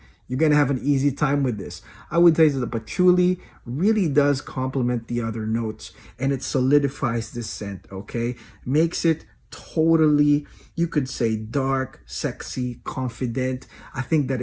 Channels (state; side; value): identical; both; correlation 1.00